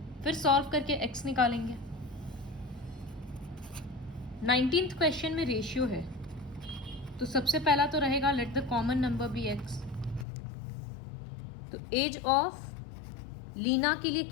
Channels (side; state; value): right; drops out; at 10.2 s